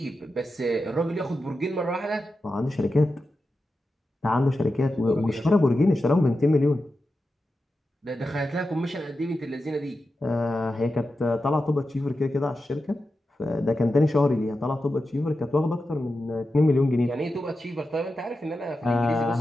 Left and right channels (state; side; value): normal; both; correlation 0.91